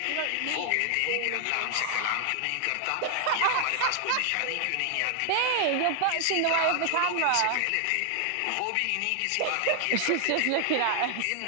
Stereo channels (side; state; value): both; different; correlation 0.00